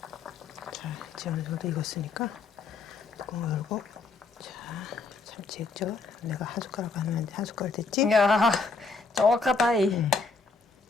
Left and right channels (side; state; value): right; quieter; 4.1 dB